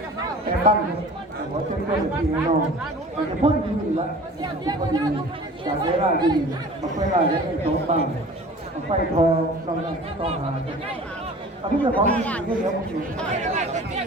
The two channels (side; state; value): both; normal; correlation 0.43